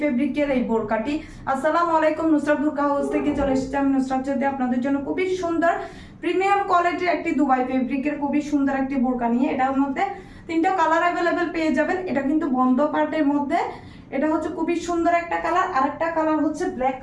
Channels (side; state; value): both; identical; correlation 1.00